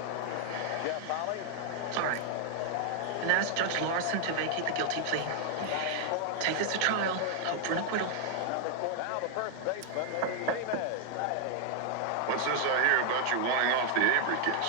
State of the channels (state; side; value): different; both; correlation 0.00